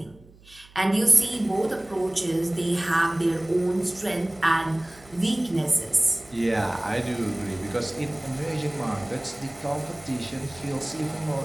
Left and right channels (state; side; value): noise; right; hum, 25 dB below the sound